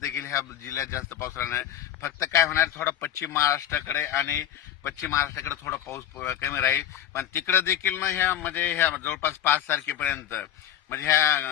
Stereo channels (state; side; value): quieter; right; 11.0 dB